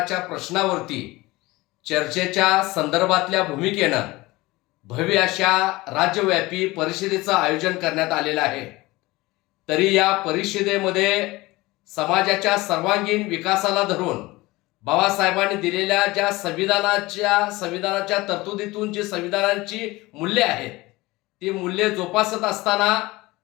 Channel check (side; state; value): right; quieter; 20.7 dB